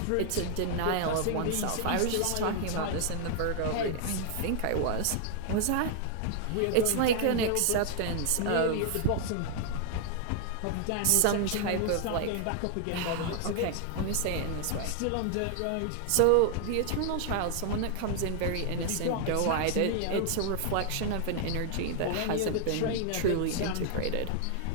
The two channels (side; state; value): both; different; correlation 0.00